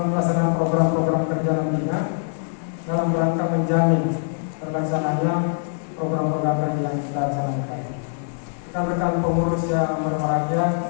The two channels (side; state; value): right; silent; digital silence